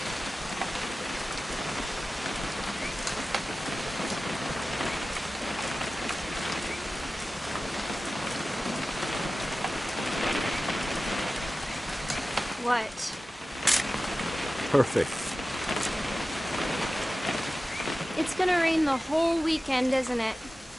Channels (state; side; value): normal; both; correlation 0.95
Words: What? Perfect. It's gonna rain the whole weekend, isn't it?